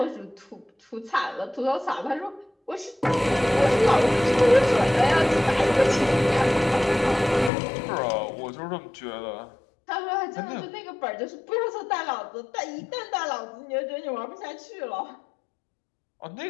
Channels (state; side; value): drops out; right; at 7.5 s